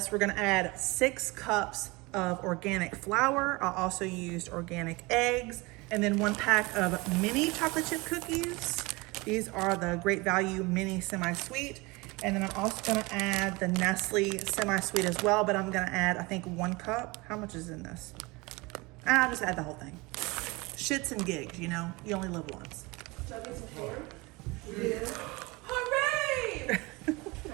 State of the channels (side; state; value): left; quieter; 24.4 dB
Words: we're gonna add 6 cups of organic flour. I also used organic eggs, and then 1 pack of mini chocolate chip cookies. These are the Great Value mini semi-sweet. And then I'm also gonna add the Nestle semi-sweet as well, but I'm gonna add, I think, 1 cup. How much is in this? I'll just add the whole thing. Shits and gigs, you know, you only live once. Should I get some hair? Yeah. Hooray! Can